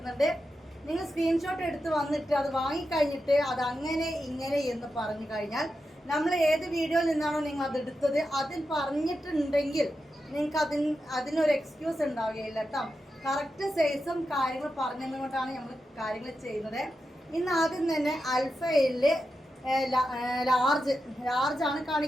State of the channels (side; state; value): both; normal; correlation 0.89